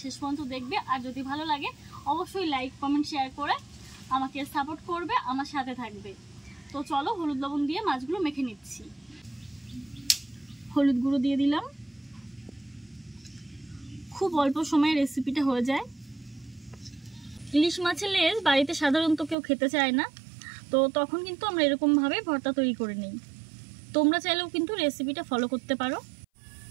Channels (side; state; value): left; drops out; at 19.4 s